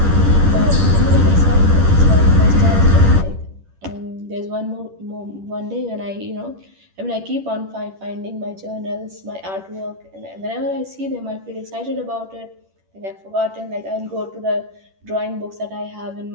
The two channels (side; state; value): left; late; 10 ms